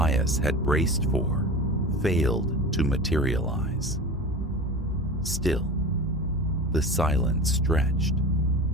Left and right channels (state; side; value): normal; both; correlation 0.32